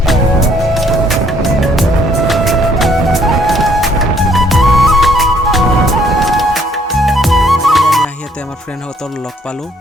আমাৰ ফ্ৰেণ্ডহঁতৰ লগ পালোঁ,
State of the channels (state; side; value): normal; both; correlation 0.65